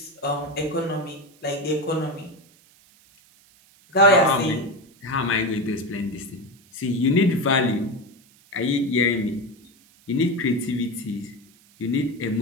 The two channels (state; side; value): noise; right; hiss, 29 dB below the sound